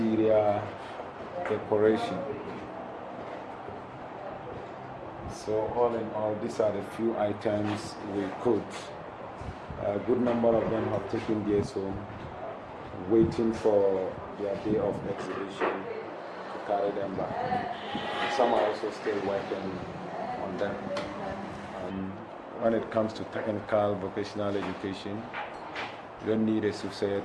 decoration. So all in all, these are the few items we could. A good number of them have taken theirs home, waiting for their day of exhibition to carry them back. Some are also still working on them. When it comes to technical vocational education, you don't need a soothsayer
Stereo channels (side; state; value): both; identical; correlation 1.00